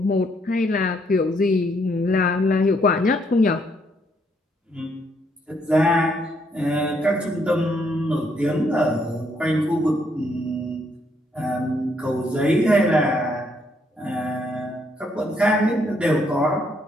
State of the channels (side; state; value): both; normal; correlation 0.72